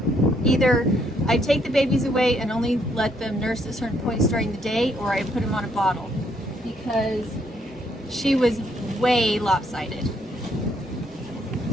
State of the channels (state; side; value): normal; both; correlation 0.71